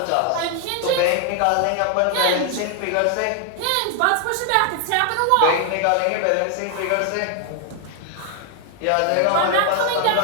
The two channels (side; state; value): both; different; correlation 0.00